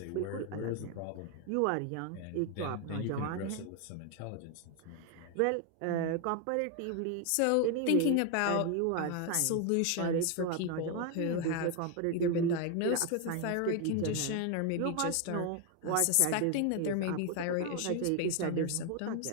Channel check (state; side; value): different; both; correlation 0.01